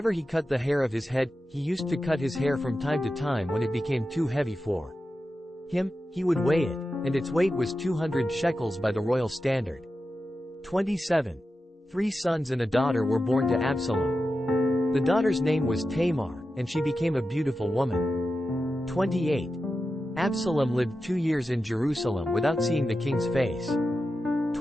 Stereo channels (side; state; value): both; normal; correlation 0.91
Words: he cut the hair of his head, he used to cut his hair from time to time when it became too heavy for him, he would weigh it, and its weight was 200 shekels by the royal standard. 27. 3 sons and a daughter were born to Absalom. The daughter's name was Tamar, and she became a beautiful woman. 28. Absalom lived 2 years in Jerusalem without seeing the king's face.